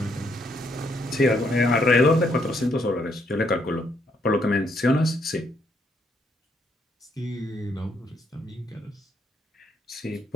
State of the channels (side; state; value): both; normal; correlation 0.73